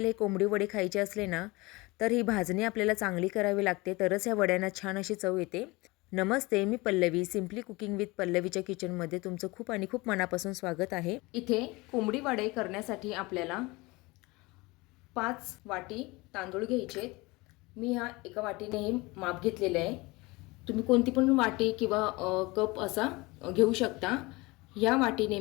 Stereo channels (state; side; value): quieter; right; 23.3 dB